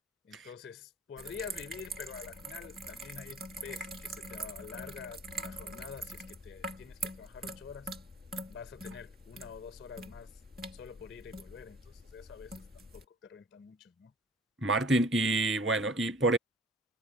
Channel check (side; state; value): both; normal; correlation 0.49